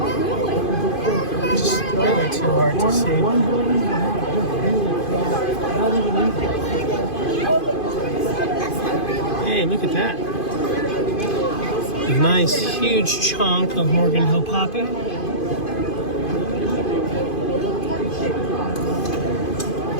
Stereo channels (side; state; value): right; late; 2.5 ms